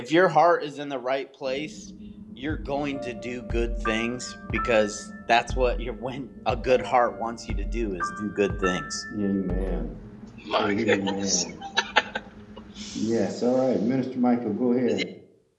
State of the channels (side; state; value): both; identical; correlation 1.00